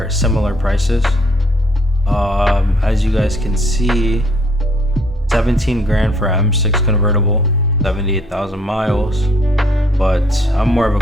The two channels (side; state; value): both; normal; correlation 0.64